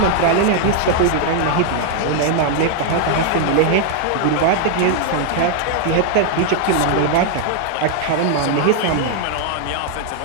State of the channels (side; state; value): both; different; correlation 0.00